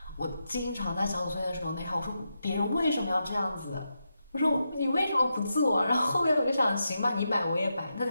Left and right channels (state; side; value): inverted; both; correlation -0.86